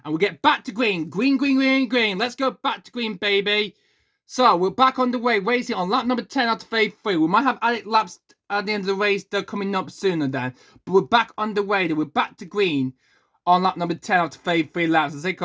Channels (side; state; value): both; identical; correlation 1.00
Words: and we'll get back to green. Green. Let's go back to green, baby. So, we're back on the way, racing on lap number 10 out of phase 3. We might have added laps at the end of the race. They're coming up sooner then. But we're back on the way. We're back to green on lap number 10 out of phase 3 laps. The safety